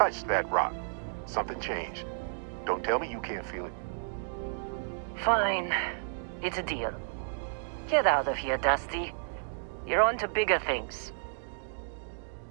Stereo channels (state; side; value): silent; left; digital silence